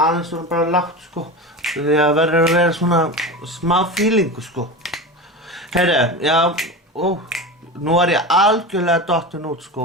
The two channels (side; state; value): both; normal; correlation 0.26